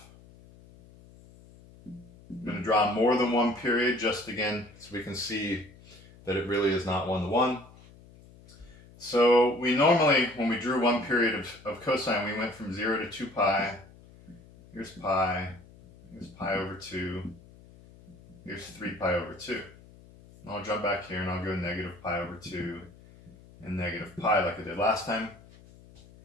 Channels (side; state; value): left; noise; hum, 23 dB below the sound